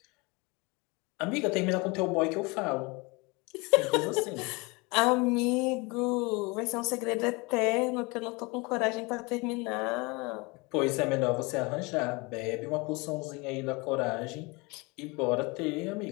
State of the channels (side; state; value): right; quieter; 26.9 dB